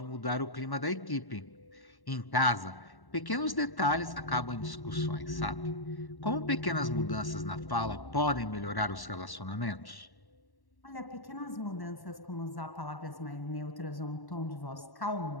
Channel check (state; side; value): late; right; 1.1 ms